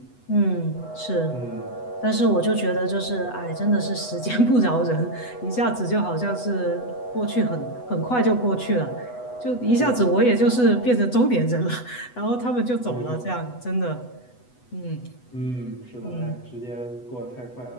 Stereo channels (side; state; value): right; late; 8.1 ms